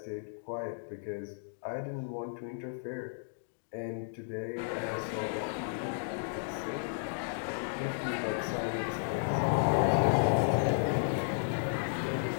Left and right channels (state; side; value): silent; right; digital silence